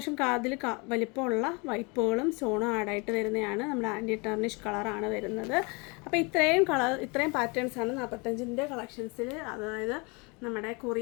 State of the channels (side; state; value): right; quieter; 29.4 dB